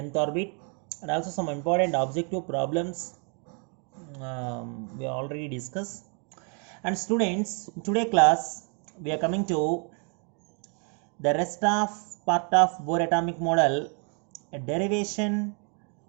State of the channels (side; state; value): left; quieter; 38.5 dB